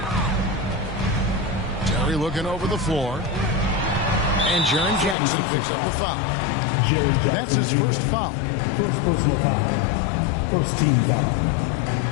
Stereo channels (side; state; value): right; drops out; at 5.2 s